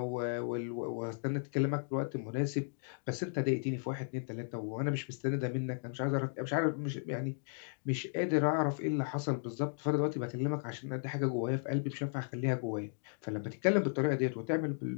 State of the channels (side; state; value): right; silent; digital silence